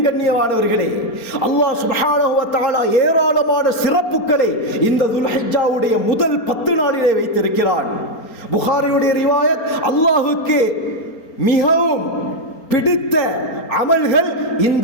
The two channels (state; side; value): late; right; 4.3 ms